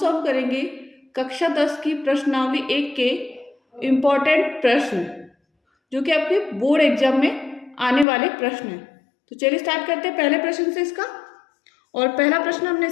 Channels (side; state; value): right; drops out; at 8.1 s